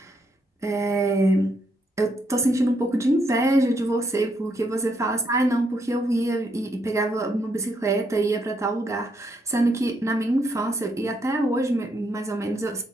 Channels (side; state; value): both; normal; correlation 0.75